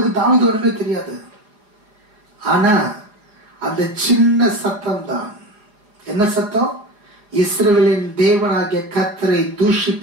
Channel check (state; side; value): late; left; 4.8 ms